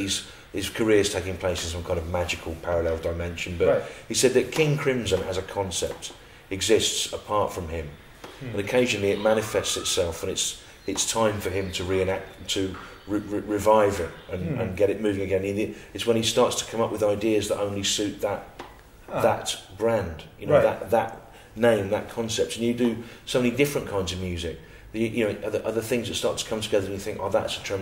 career's taking place in some kind of magical parallel dimension. But he said that King Crimson as a concept exists apart from him, and occasionally it manifests itself, and it's time for him to revive it and get it moving again. It's when he starts to come up with ideas that only suit that brand, that name, that concept. And you do so many different kinds of music. Other things that start to come together, and you think, that's a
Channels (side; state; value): both; identical; correlation 1.00